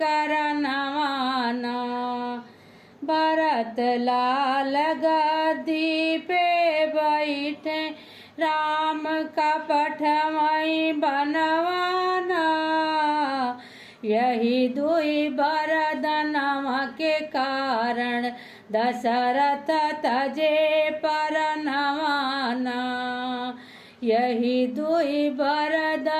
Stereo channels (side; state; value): both; identical; correlation 1.00